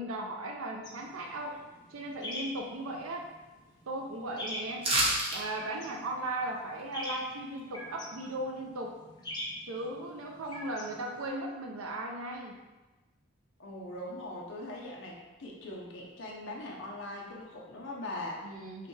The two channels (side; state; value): both; normal; correlation 0.01